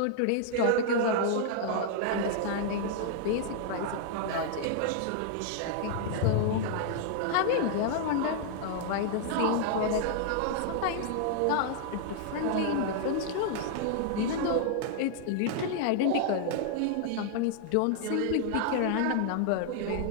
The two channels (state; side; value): different; both; correlation 0.00